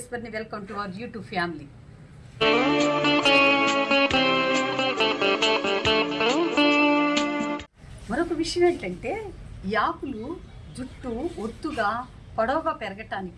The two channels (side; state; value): both; identical; correlation 1.00